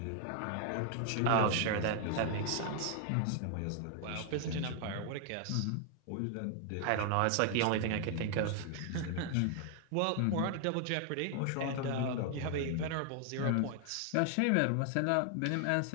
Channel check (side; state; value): both; different; correlation 0.00